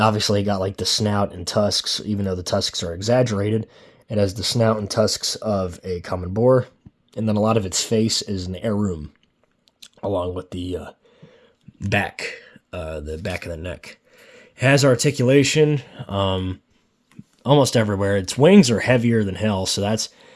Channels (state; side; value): identical; both; correlation 1.00